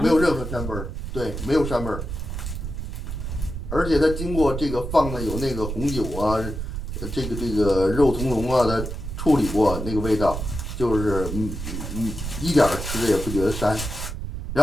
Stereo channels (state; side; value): noise; right; rumble, 5 dB below the sound